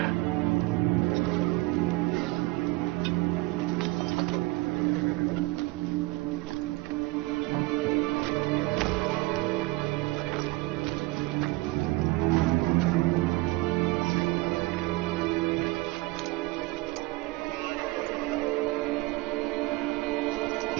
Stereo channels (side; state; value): left; quieter; 21.8 dB